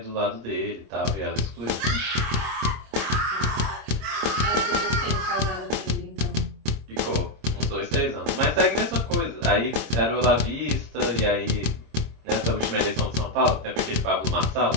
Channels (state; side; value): late; left; 26 ms